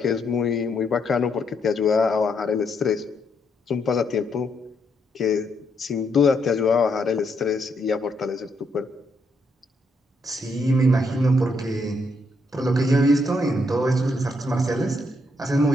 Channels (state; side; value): normal; both; correlation 0.76